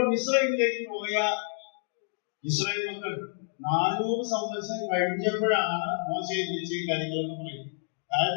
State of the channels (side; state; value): right; silent; digital silence